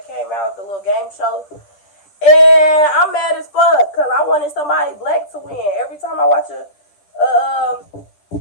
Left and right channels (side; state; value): right; late; 10 ms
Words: came out, the little game show. And I'm mad as fuck, because I wanted somebody black to win. Every time I watch